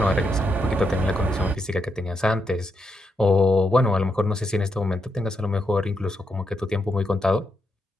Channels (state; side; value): normal; both; correlation 0.82